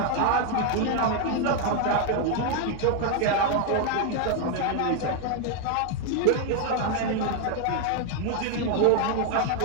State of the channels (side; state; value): both; different; correlation 0.01